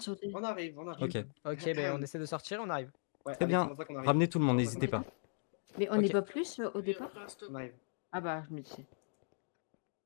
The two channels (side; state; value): right; silent; digital silence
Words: sauter. On arrive, on Ok, arrive. Ok, ben on essaie de sortir, on arrive. Ouais, très allez, bien. c'est pour ça qu'on arrive. Ramenez tout le monde, C'est pour ça n'hésitez qu'on pas. Mais on Ok. n'est pas plus au départ? On arrive. Ah bah, je me disais.